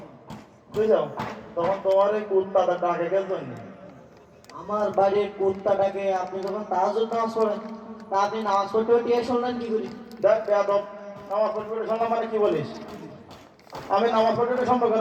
বুঝছো, তখন তোমার এই কুত্তাটা ডাকে কেন জন্য? আমার বাড়ির কুত্তাটাকে আপনি যখন তাহাজ্জুদ নামাজ পড়েন, তা আপনি নামাজ পড়তে পড়তে শুনলেন কি করি? দেখ বেয়াদব, নামাজ পড়তে পড়তে শুনলাম মানে কি বলিস? আমি নামাজ পড়তে পড়তে শুনবো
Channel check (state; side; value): identical; both; correlation 1.00